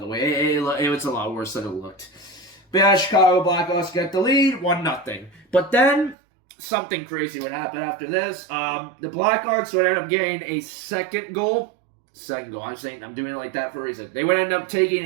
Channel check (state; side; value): drops out; left; at 6.2 s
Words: way. It was a lot worse than it looked. But yeah, Chicago Blackhawks get the lead, 1-0. But then something crazy would happen after this. The Blackhawks would end up getting a second goal. I'm doing it like that for a reason. They would end up taking